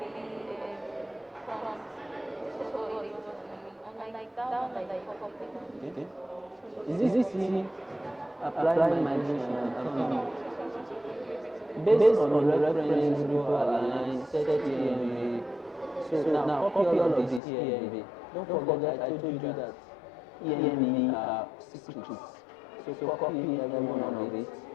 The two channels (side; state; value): right; drops out; at 17.4 s